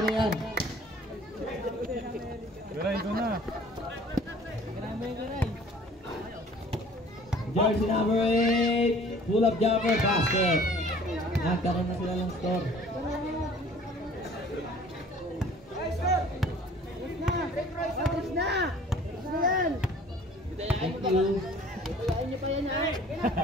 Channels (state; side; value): normal; both; correlation 0.51